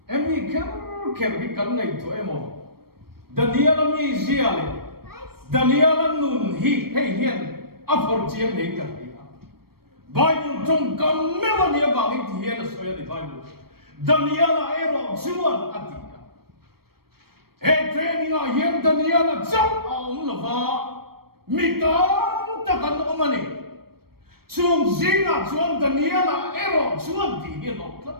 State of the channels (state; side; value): late; left; 0.94 ms